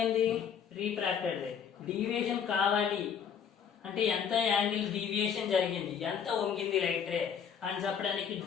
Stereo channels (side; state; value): right; quieter; 7.5 dB